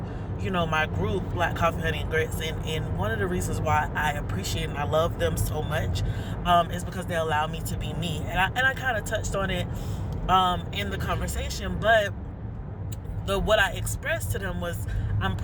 my group, Black Coffee, Honey, and Grits, and one of the reasons why I appreciate and I love them so much is because they allow me to be me. And I kind of touched on it in the conversation, but what I expressed to them was, I'm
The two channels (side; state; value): both; identical; correlation 1.00